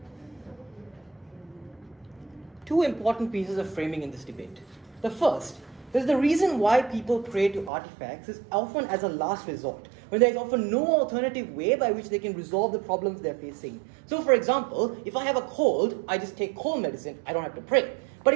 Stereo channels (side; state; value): left; drops out; at 7.7 s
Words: Two important pieces of framing in this debate. The first is the reason why people pray to artifacts is often as a last resort, when there is often no alternative way by which they can resolve the problems they're facing. So for example, if I have a cold, I just take cold medicine, I don't have to pray. But